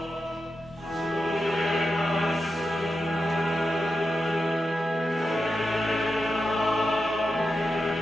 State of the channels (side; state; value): both; normal; correlation 0.89